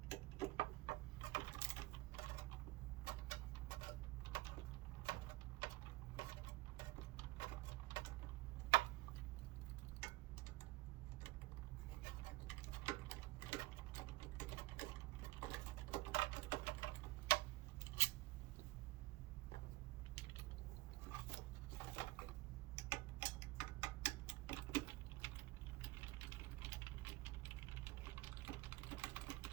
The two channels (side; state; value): left; quieter; 20.6 dB